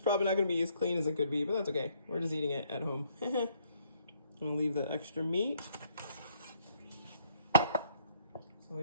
not going to be as clean as it could be, but that's okay. We're just eating it at home. I'm going to leave the extra meat. So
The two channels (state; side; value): inverted; both; correlation -0.68